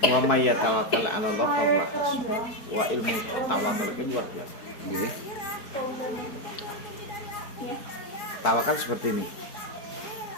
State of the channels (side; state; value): right; late; 4.4 ms